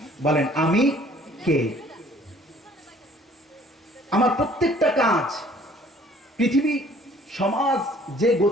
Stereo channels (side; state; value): both; normal; correlation 0.56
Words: বলেন আমি কে? আমার প্রত্যেকটা কাজ, পৃথিবী সমাজ যে